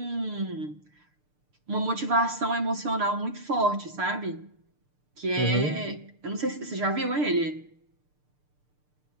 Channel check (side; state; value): left; late; 6.7 ms